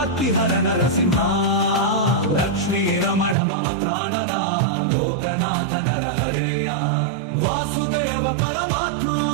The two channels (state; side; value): drops out; left; at 3.4 s